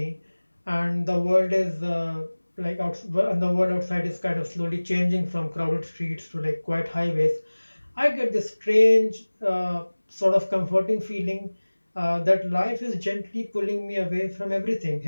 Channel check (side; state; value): both; inverted; correlation -1.00